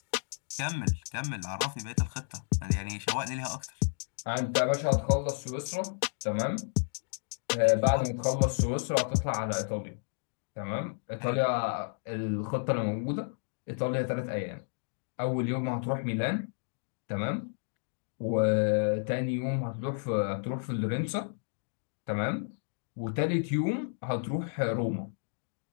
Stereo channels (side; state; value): right; silent; digital silence